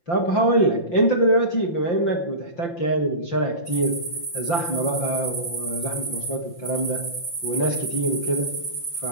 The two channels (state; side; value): late; right; 5.8 ms